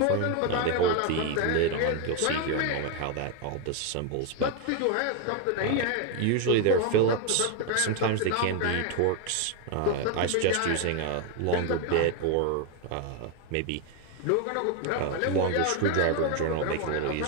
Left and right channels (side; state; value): both; different; correlation 0.01